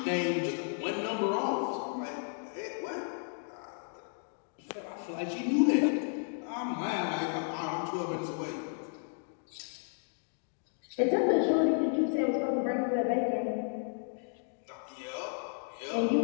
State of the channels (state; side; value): silent; right; 56 dB below the other